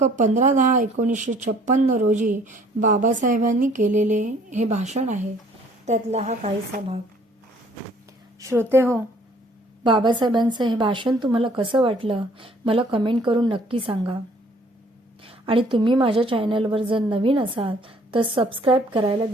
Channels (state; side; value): normal; both; correlation 0.59